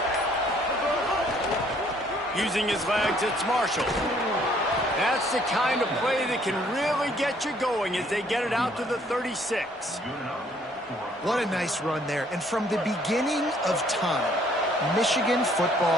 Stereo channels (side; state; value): both; normal; correlation 0.63